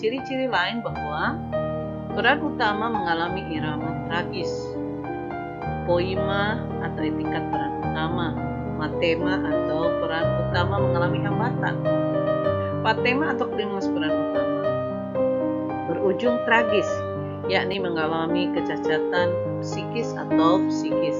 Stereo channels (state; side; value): identical; both; correlation 1.00